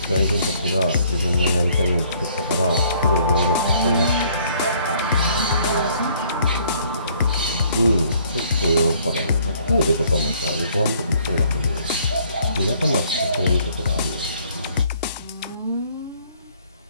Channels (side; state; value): both; inverted; correlation -0.62